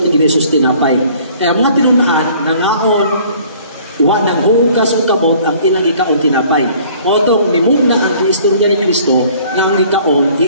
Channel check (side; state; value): both; inverted; correlation -0.54